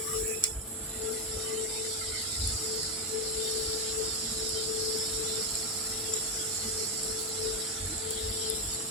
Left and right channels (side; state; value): both; normal; correlation 0.09